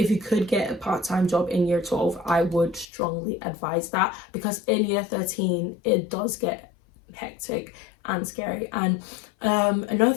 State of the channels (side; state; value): right; drops out; at 2.9 s